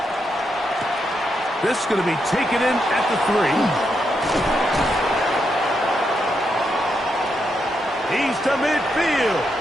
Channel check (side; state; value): both; normal; correlation 0.81